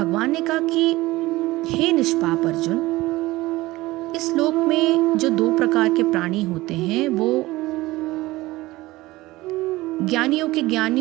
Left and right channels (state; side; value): quieter; left; 19.0 dB